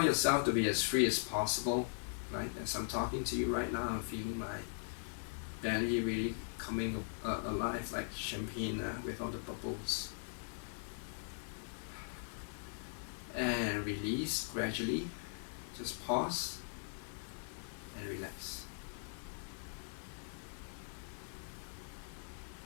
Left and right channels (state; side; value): silent; right; 51 dB below the other